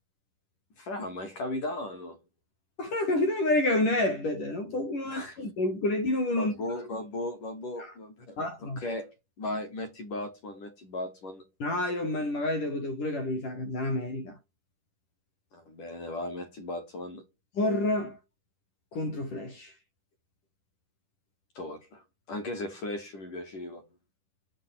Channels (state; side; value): late; right; 10 ms